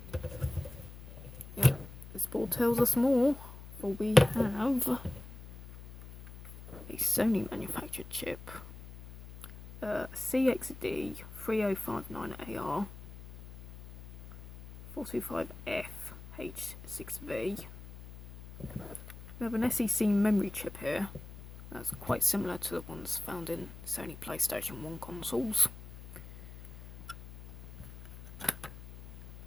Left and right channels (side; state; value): left; noise; hum, 15 dB below the sound